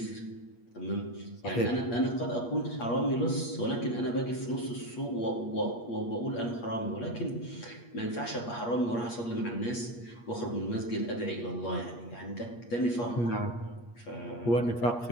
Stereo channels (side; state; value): right; late; 8.5 ms